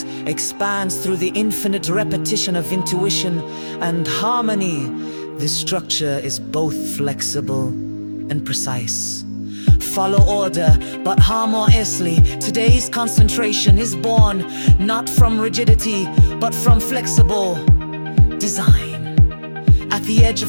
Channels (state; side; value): inverted; both; correlation -1.00